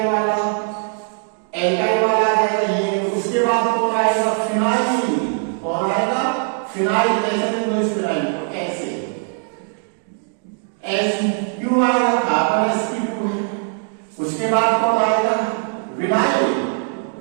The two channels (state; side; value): silent; left; 56 dB below the other